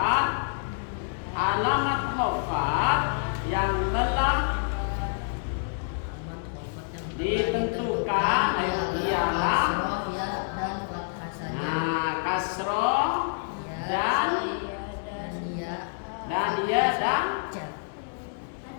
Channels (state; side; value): silent; right; digital silence